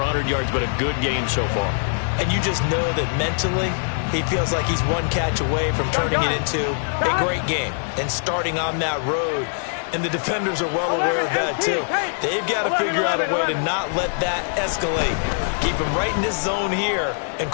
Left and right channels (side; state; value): right; silent; 63 dB below the other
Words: yards, but a good game so far. And you just know that mentally he feels like he's one catch away from turning it into a great game and starting on that road. And the defenders are well aware of that, too. They've got to figure out a way to not let that escalate. Keep him right in this zone here and